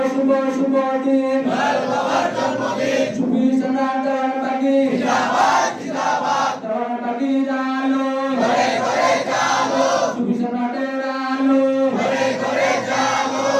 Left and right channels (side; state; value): both; identical; correlation 1.00